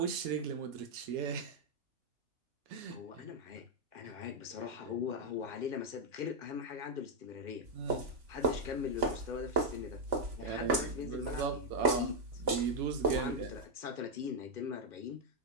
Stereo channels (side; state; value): left; late; 3.5 ms